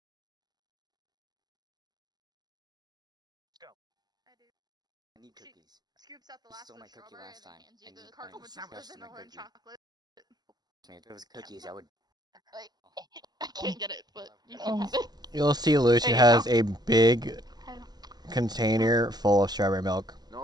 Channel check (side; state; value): left; late; 0.20 ms